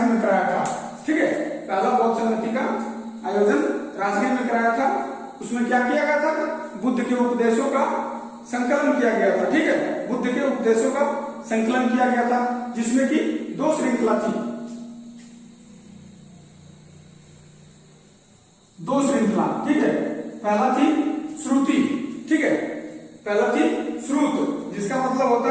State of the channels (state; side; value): identical; both; correlation 1.00